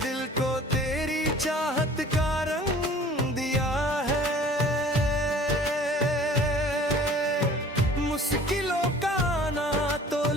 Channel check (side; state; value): both; normal; correlation 0.48